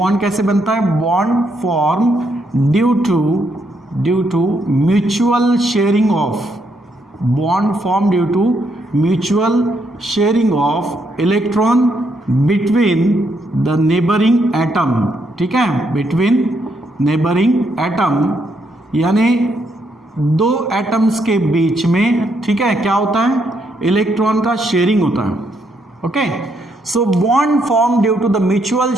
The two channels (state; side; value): normal; both; correlation 0.76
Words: कैसे बनता है? Bond form due to mutual sharing of bond form due to mutual sharing of electron between the neighbouring atom. ठीक है, बिटवीन नेबरिंग एटम, यानी दो एटम्स के बीच में, ठीक है, क्या होता है? इलेक्ट्रॉन का शेयरिंग होता है। Okay, so bond form due to the mutual